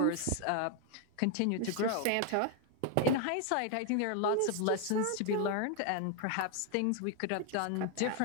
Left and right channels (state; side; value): different; both; correlation 0.01